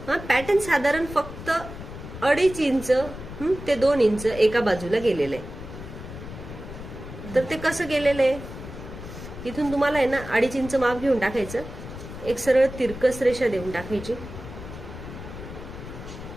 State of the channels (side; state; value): left; noise; rumble, 12 dB below the sound